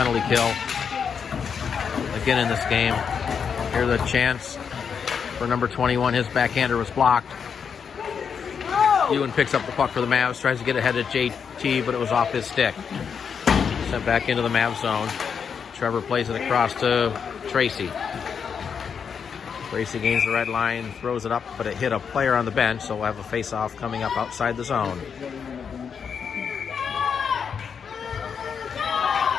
kill again in this game. Here's a chance for number 21. His backhander was blocked. Ewan picks up the puck for the Mavs, tries to get ahead of JT, but it was off his stick. Sent back into the Mavs zone. Trevor plays it across to Tracy. Tracy gains the red line, throws it up, but it hit a player on the bench, so we'll have a face-off coming up outside the zone.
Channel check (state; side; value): quieter; right; 6.7 dB